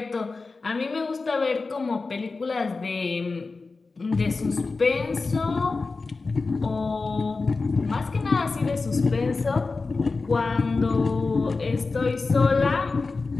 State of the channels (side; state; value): right; quieter; 4.0 dB